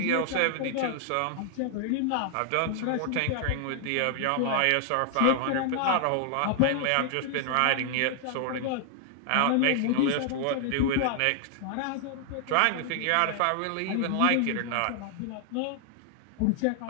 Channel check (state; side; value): different; both; correlation 0.00